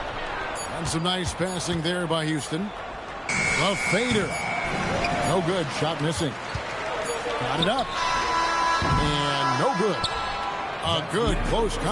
some nice passing there by Houston. A fader. No good. Shot missing. Got it up. And no good. A good close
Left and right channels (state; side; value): identical; both; correlation 1.00